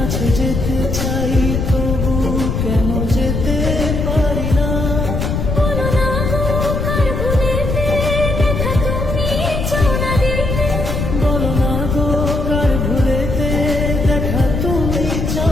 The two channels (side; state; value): left; noise; rumble, 1 dB below the sound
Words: যেতে চাই তবু কেন যেতে পারি না। বলো না গো কার ভুলেতে দেখা তুমি চাও না দিতে, বলো না গো কার ভুলেতে দেখা তুমি